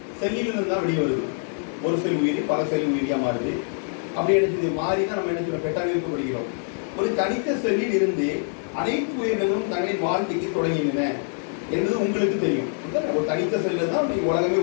செல்லிலிருந்து தான் வெளியே வருது. ஒரு செல் உயிரி பல செல் உயிரியா மாறுது. அப்படி என்ன மாறி தான் நம்ம என்ன செய்யறோம்? பெட்டாவிற்கு படிக்கிறோம். ஒரு தனித்த செல்லில் இருந்து அனைத்து உயிரினங்களும் தங்களின் வாழ்க்கைக்கு தொடங்கின என்பது உங்களுக்கு தெரியும். ஒரு தனித்த செல்ல தான் உலகமே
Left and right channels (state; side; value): silent; right; 62 dB below the other